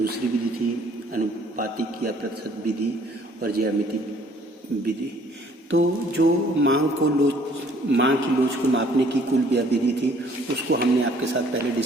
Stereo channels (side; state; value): both; normal; correlation 0.59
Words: विधि थी अनुपातिक या प्रतिशत विधि और ज्यामिति विधि। तो जो मांग की लोच को मापने की कुल व्यय विधि थी उसको हमने आपके साथ पहले